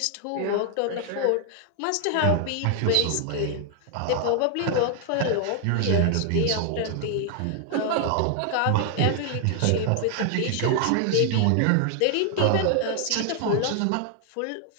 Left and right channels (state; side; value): different; both; correlation 0.00